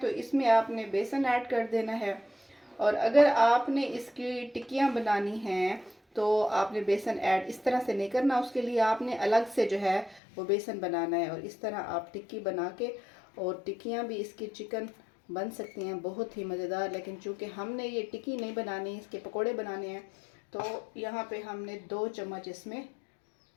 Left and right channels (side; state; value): right; drops out; at 10.2 s